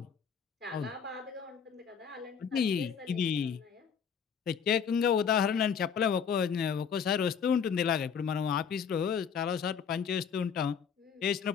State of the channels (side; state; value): right; quieter; 7.0 dB